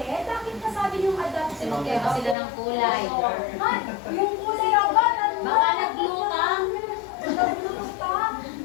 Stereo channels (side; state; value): right; drops out; at 2.4 s